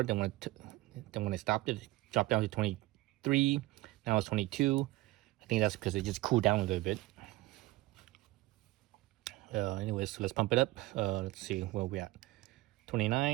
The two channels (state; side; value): quieter; left; 18.8 dB